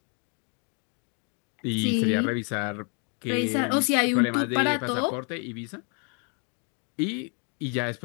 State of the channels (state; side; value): quieter; right; 37.8 dB